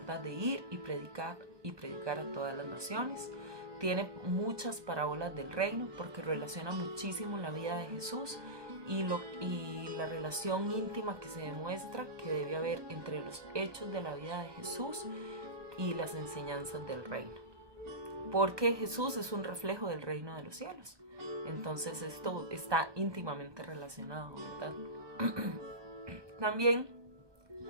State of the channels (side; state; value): left; late; 1.2 ms